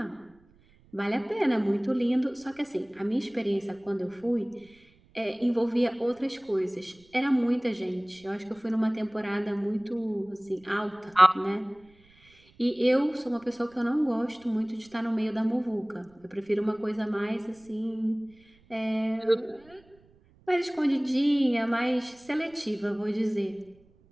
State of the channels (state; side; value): noise; right; rumble, 30 dB below the sound